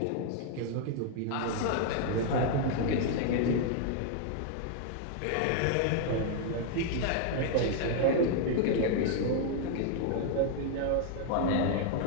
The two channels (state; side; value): different; both; correlation 0.00